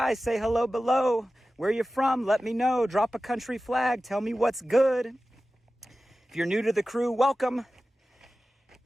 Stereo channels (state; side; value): normal; both; correlation 0.95